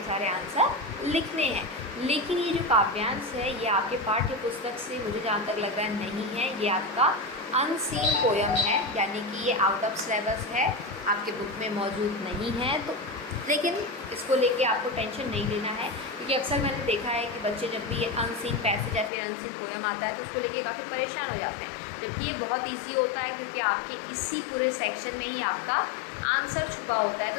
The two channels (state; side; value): drops out; right; at 19.1 s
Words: सारे आंसर लिखने हैं। लेकिन ये जो काव्यांश है ये आपके पाठ्य पुस्तक से मुझे जहाँ तक लग रहा है नहीं है, ये आपका अनसीन पोयम है, यानी कि ये आउट ऑफ सिलेबस है, आपके बुक में मौजूद नहीं है। तो लेकिन इसको लेके आपको टेंशन नहीं लेना है, क्योंकि अक्सर मैंने देखा है कि बच्चे जब भी ये अनसीन पैसेज या फिर अनसीन पोयम आता है तो उसको लेके काफ़ी परेशान हो जाते हैं, जबकि ये बहुत ईजी होता है, क्योंकि आपके इसी पूरे सेक्शन में ही आपका आंसर छुपा होता है।